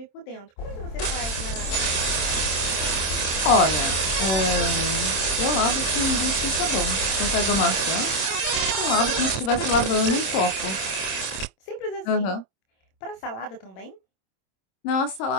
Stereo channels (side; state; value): right; late; 26 ms